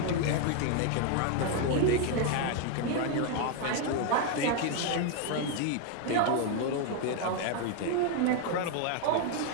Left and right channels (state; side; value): different; both; correlation 0.01